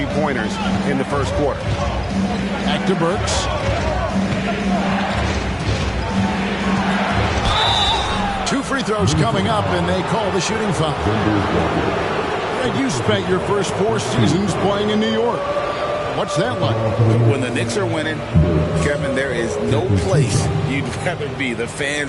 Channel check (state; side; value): identical; both; correlation 1.00